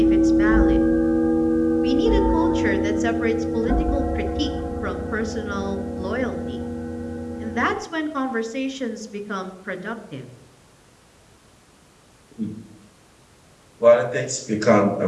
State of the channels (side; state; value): both; identical; correlation 1.00